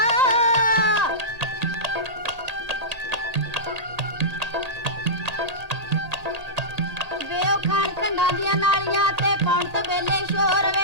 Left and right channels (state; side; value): late; left; 1.8 ms